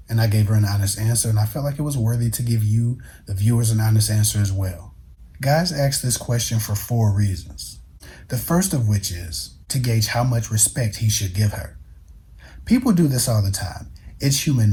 And I gave her an honest answer, and I felt like it was worthy to give you, the viewers, an honest answer as well. Guys ask this question for 4 reasons. The first of which is to gauge how much respect he should give her. People do this all the time. It's human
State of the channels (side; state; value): both; identical; correlation 1.00